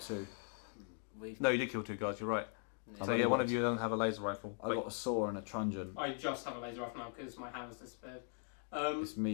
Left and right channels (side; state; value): right; silent; 51 dB below the other